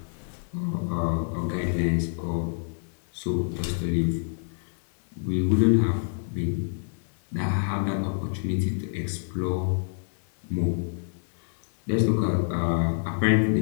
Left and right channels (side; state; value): right; silent; 60 dB below the other